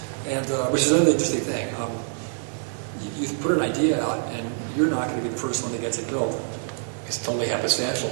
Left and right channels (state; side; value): silent; left; digital silence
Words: and which is another interesting thing. You put an idea out, and you're not going to be the first one that gets it built. It's totally happenstantial